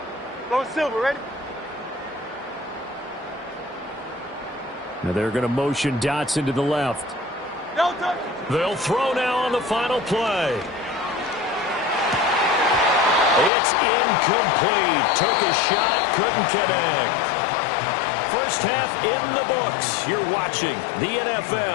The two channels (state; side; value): drops out; right; at 13.5 s